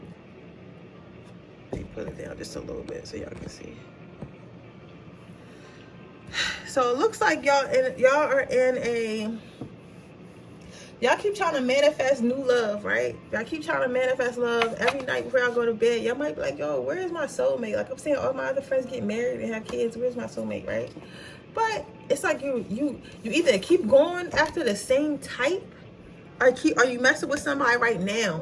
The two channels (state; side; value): identical; both; correlation 1.00